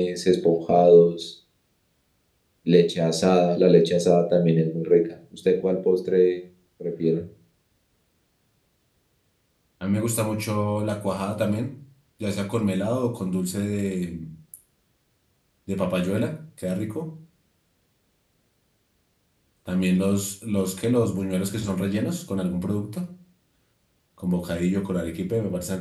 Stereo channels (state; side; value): identical; both; correlation 1.00